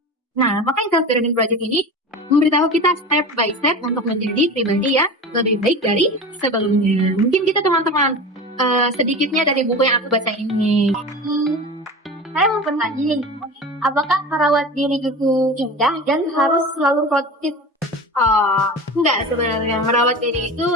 Nah, maka self-learning project ini memberitahu kita step by step untuk menjadi pribadi yang lebih baik dari sebelumnya. Mungkin kita teman-teman sedikitnya dari buku yang aku baca ini. Saya mau bertanya nih, apakah merawat diri itu indah dan harus selalu produktif? Enggak, sebenarnya merawat diri itu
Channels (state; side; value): normal; both; correlation 0.31